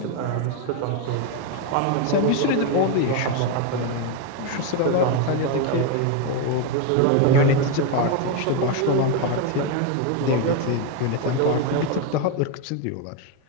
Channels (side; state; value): both; different; correlation 0.02